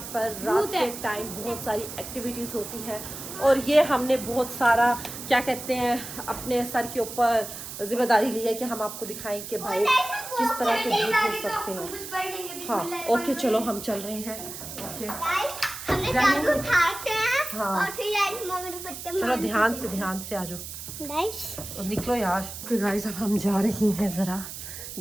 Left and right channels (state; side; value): noise; right; hiss, 10 dB below the sound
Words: पर रात के टाइम बहुत सारी एक्टिविटीज़ होती हैं। और ये हमने बहुत सारा क्या कहते हैं अपने सर के ऊपर जिम्मेदारी ली है कि हम आपको दिखाएं कि भाई किस तरह के भूत हो सकते हैं। हाँ ओके, चलो हम चल रहे हैं। ओके हाँ चलो ध्यान से आ जाओ, निकलो यार। ओके गाइस, अब हम जा रही हैं, ज़रा